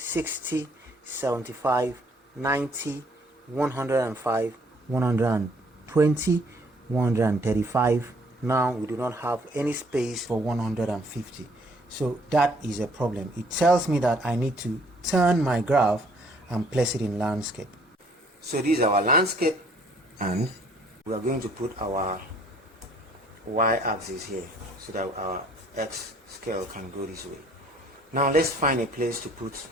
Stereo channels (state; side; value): normal; both; correlation 0.61